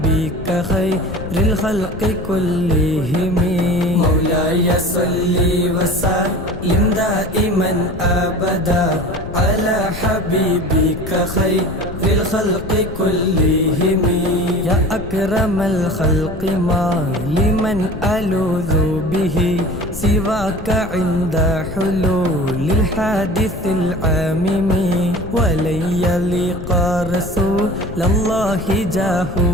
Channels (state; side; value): noise; left; rumble, 11 dB below the sound